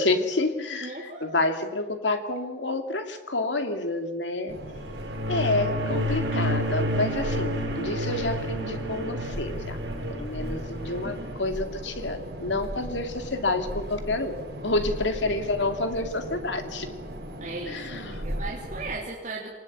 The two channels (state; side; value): normal; both; correlation 0.04